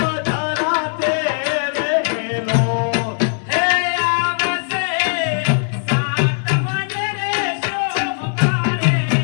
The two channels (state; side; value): silent; right; digital silence